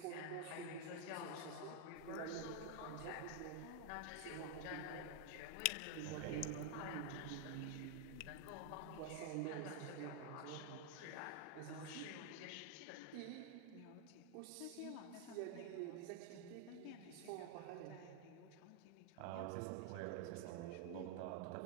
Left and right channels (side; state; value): both; different; correlation 0.00